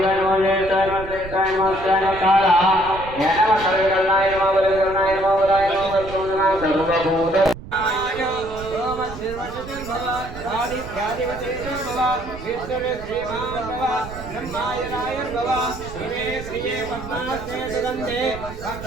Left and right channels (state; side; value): noise; right; rumble, 13 dB below the sound